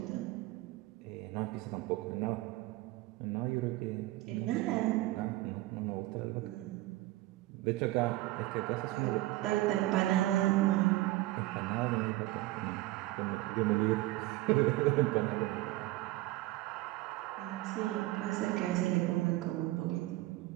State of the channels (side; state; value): left; quieter; 18.1 dB